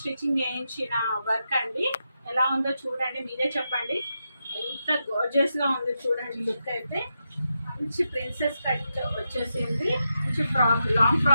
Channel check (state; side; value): inverted; both; correlation -0.86